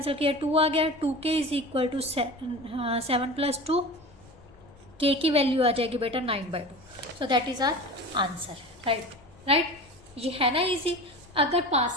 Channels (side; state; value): left; noise; rumble, 26 dB below the sound